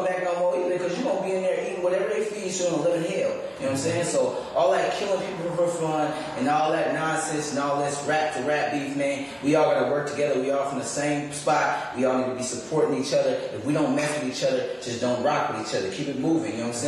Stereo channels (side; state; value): both; identical; correlation 1.00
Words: back no more either because you're going to be in there eating whatever they feed you and live in hell. You know what I'm saying? So all that killing people for fun and all that nonsense and all this rap to rap beef, man, we all got to work together. We all from the same spot. We all need to be supporting each other. If we don't mess with each other, just don't rock with each other. Keep it moving. You know what I'm